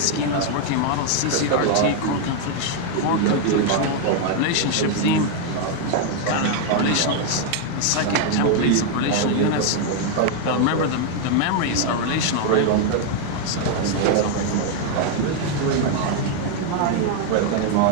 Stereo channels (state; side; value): different; both; correlation 0.01